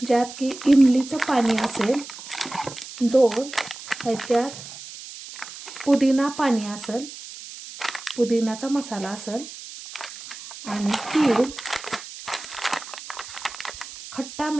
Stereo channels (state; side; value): noise; right; hiss, 13 dB below the sound